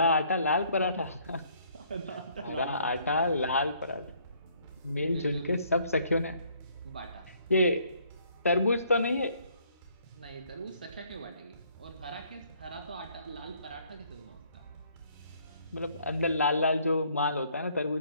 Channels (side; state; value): both; inverted; correlation -0.64